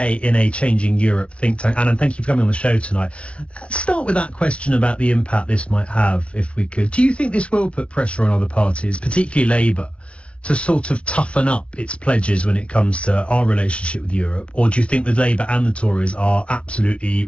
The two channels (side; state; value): right; late; 0.060 ms